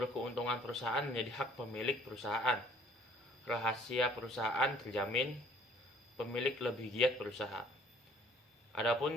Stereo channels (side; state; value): both; normal; correlation 0.56